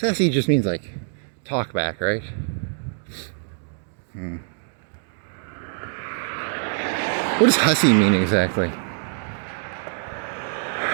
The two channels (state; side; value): silent; left; digital silence